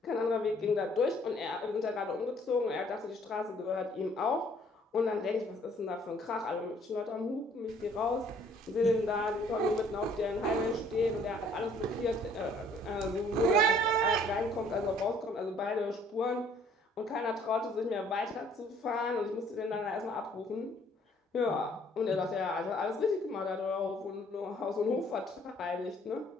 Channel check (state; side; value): normal; both; correlation 0.60